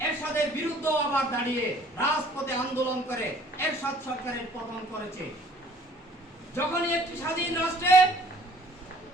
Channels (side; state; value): both; normal; correlation 0.55